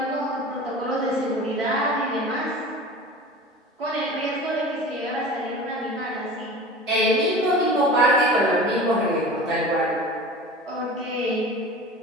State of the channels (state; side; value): normal; both; correlation 0.36